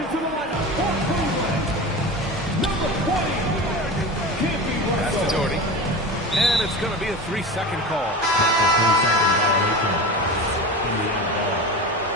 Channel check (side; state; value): both; normal; correlation 0.29